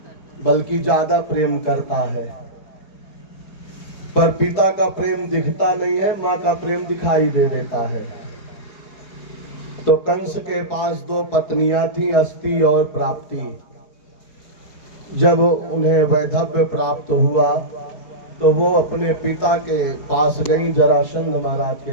बल्कि ज्यादा प्रेम करता है। पर पिता का प्रेम दिखता नहीं है, माँ का प्रेम दिखाई दे देता है। तो कंस के पास 2 पत्नियां थीं, अस्ति और प्राप्ति। जब उन्हें वैधव्य प्राप्त हुआ तो वो अपने पिता के पास गई, जरासंध महाराज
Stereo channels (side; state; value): right; late; 4.8 ms